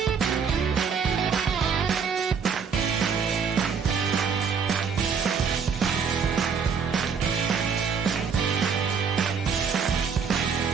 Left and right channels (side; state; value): left; quieter; 6.1 dB